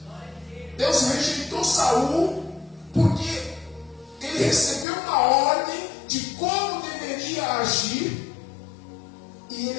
Deus rejeitou Saul porque ele recebeu uma ordem de como deveria agir e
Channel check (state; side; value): drops out; right; at 4.9 s